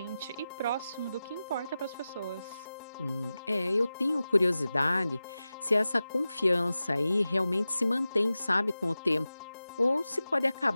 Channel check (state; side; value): inverted; both; correlation -0.95